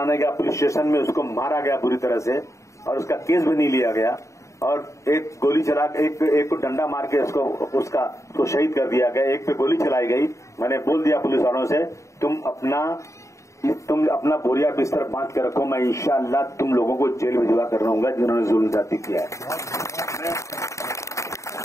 गया पुलिस स्टेशन में, उसको मारा गया बुरी तरह से और उसका केस भी नहीं लिया गया और एक गोली चला एक को डंडा मार के उसको शहीद कर दिया गया। एक पे गोली चलाई गई। मैंने बोल दिया पुलिस वालों से, तुम अपना बोरिया बिस्तर बांध के रखो, मैं इंशाअल्लाह तुम लोगों को जेल भिजवा कर रहूंगा जिन्होंने जुल्म जाति किया है।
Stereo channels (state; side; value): late; right; 0.15 ms